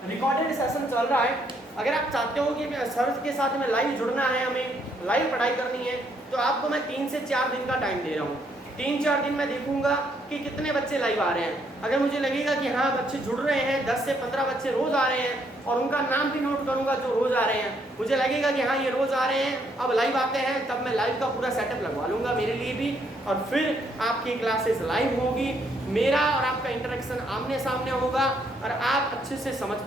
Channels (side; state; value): both; normal; correlation 0.71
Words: रिकॉर्डेड सेशन चल रहा है। अगर आप चाहते हो कि सर के साथ में लाइव जुड़ना है, हमें लाइव पढ़ाई करनी है, तो आपको मैं 3 से 4 दिन का टाइम दे रहा हूँ। 3-4 दिन में देखूंगा कि कितने बच्चे लाइव आ रहे हैं। अगर मुझे लगेगा कि हाँ बच्चे जुड़ रहे हैं, 10 से 15 बच्चे रोज आ रहे हैं, और उनका नाम भी नोट करूंगा जो रोज आ रहे हैं, मुझे लगेगा कि हाँ ये रोज आ रहे हैं, अब लाइव आते हैं, तब मैं लाइव का पूरा सेटअप लगवा लूंगा मेरे लिए भी, और फिर आपकी क्लासेस लाइव होगी, मेरा और आपका इंटरेक्शन आमने सामने होगा, और आप अच्छे से समझ